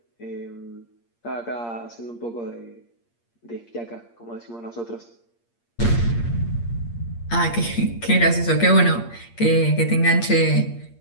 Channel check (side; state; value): right; late; 8.6 ms